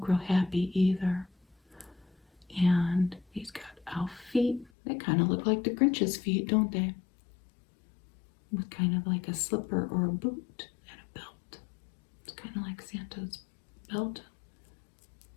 real happy either. And he's got elf feet. They kind of look like the Grinch's feet, don't they? With kind of like a slipper or a boot and a belt. It's kind of like Santa's belt.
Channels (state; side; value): drops out; right; at 4.7 s